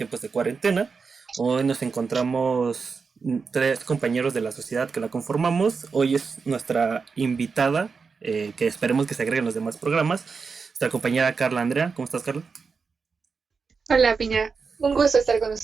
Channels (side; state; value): left; quieter; 5.1 dB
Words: de cuarentena. Hoy nos encontramos tres compañeros de la sociedad que la conformamos. Hoy es nuestra invitada, que esperemos que se agreguen los demás programas, nuestra compañera Carla Andrea. ¿Cómo estás, Carla? Hola, Piña. Un gusto estar con